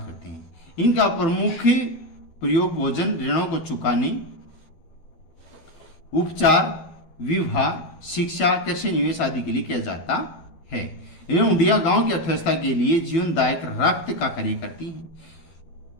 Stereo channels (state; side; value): late; right; 12 ms